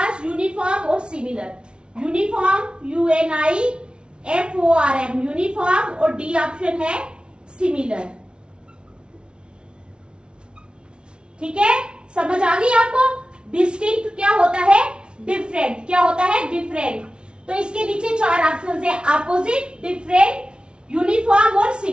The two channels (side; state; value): left; late; 0.056 ms